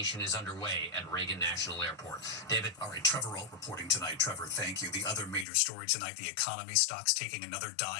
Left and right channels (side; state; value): right; drops out; at 5.5 s